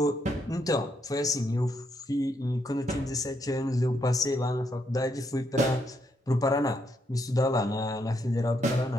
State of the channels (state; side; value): normal; both; correlation 0.77